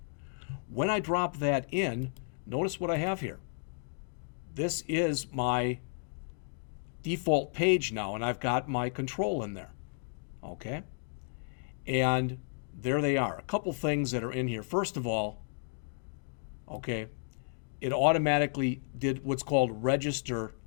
When I drop that in, notice what I have here. This is my default page now, and I've got my control in there. Okay. And there they are. A couple things that are in here. First of all, okay, it automatically did what's called register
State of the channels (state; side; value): silent; right; digital silence